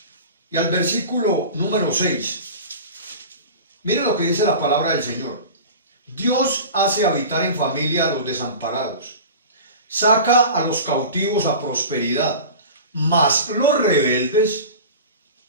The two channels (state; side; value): inverted; both; correlation -0.34